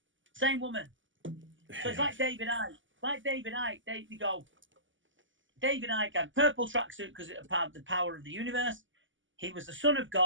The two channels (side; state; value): left; late; 0.56 ms